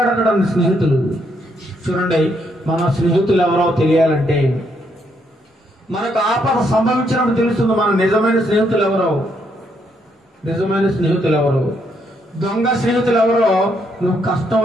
స్నేహితులు. చూడండి, మన స్నేహితులు ఎవరో తెలియాలంటే మనకు ఆపద సంభవించినప్పుడు తెలుస్తుంది మన నిజమైన స్నేహితులు ఎవరో. నిజమైన స్నేహితులు ఎవరో, దొంగ స్నేహితులు ఎవరో నువ్వు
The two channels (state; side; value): normal; both; correlation 0.74